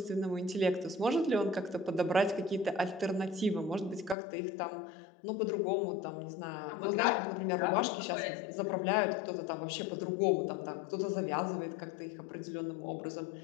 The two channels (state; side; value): drops out; right; at 4.2 s